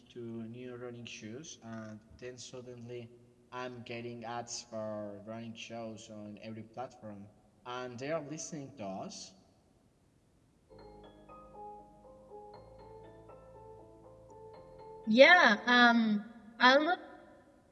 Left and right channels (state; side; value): identical; both; correlation 1.00